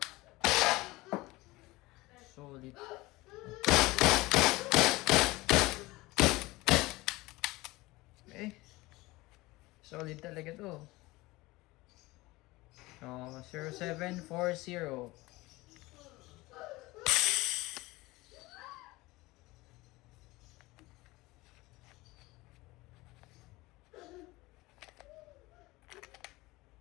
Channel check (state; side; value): quieter; right; 20.7 dB